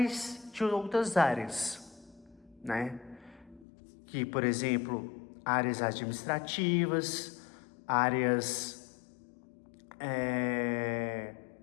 de outras áreas, né? Que, por exemplo, áreas administrativas, áreas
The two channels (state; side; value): drops out; right; at 3.7 s